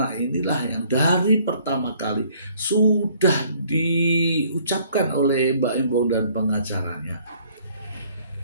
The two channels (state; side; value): inverted; both; correlation -0.60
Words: inilah yang dari pertama kali sudah diucapkan oleh Baim Wong dan pengacaranya.